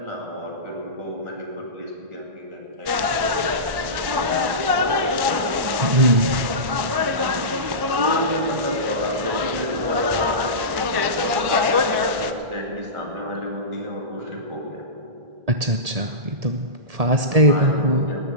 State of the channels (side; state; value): left; late; 1.1 ms